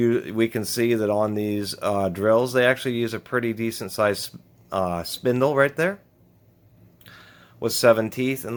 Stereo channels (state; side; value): identical; both; correlation 1.00